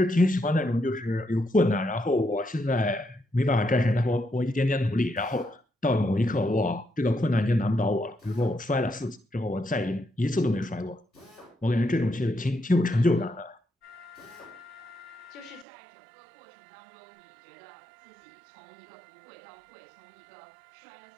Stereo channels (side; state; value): left; drops out; at 15.7 s